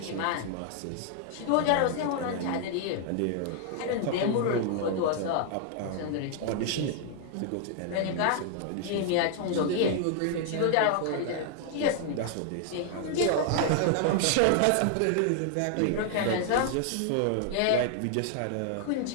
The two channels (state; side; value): different; both; correlation 0.00